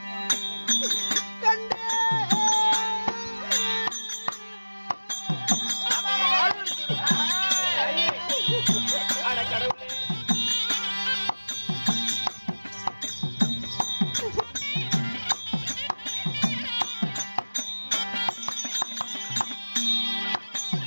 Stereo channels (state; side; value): inverted; both; correlation -1.00